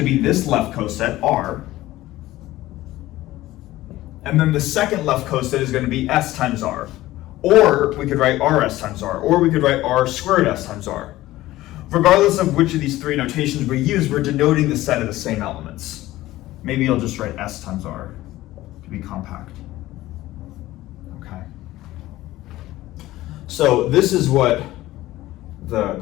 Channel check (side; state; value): right; quieter; 16.5 dB